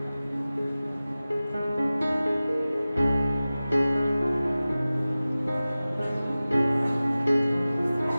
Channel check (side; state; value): both; inverted; correlation -0.97